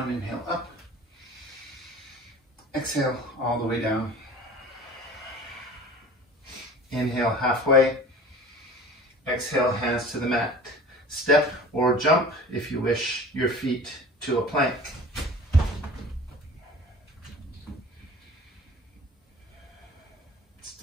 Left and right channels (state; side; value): normal; both; correlation 0.42